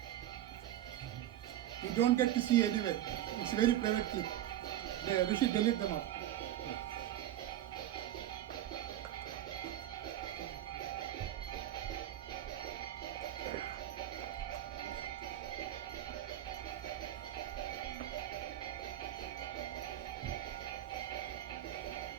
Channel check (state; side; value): quieter; left; 12.6 dB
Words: You don't get to see anywhere. It's very private clip. We should delete them up.